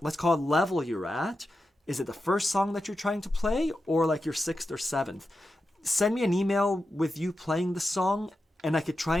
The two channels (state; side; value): normal; both; correlation 0.90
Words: let's call it, level you're at. Is it the first song that you're trying to play, or like your 6th or 7th? Send me an email with you playing the song, and I could try